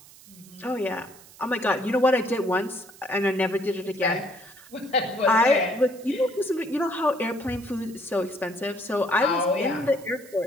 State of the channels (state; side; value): noise; right; hiss, 22 dB below the sound